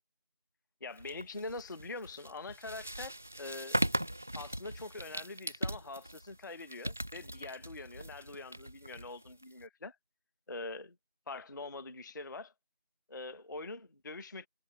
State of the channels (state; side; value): inverted; both; correlation -0.72